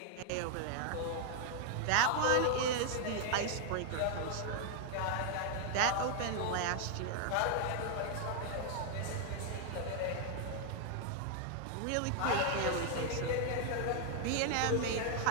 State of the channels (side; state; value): both; different; correlation 0.00